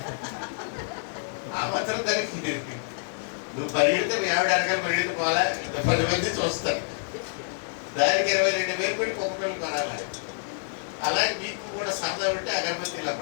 ఆ మాత్రం దానికి నువ్వు పరిగెడితే మీ ఆవిడ అనగానే పరిగెడితే పోవాలా? 10 మంది చూస్తారు. దానికి 22,000 పెట్టి కుక్కపిల్లలు కొనాలి. అలాగే మీకు కూడా సరదా ఉంటే అగరబత్తిలా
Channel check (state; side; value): silent; right; digital silence